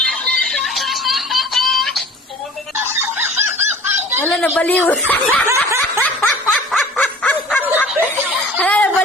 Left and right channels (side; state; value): both; normal; correlation 0.44